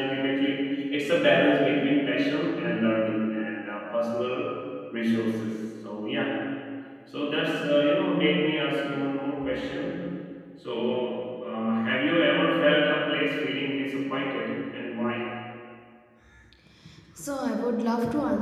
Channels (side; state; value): both; identical; correlation 1.00